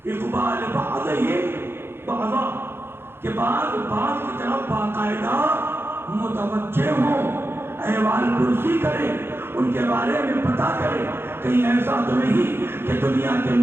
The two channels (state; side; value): late; left; 0.11 ms